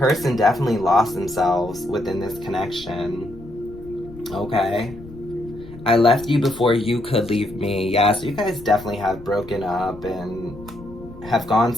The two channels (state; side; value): noise; left; rumble, 17 dB below the sound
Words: definitely lost themselves within this connection. Okay. I left you before you could leave me. Yeah, so you guys definitely have broken up and have gone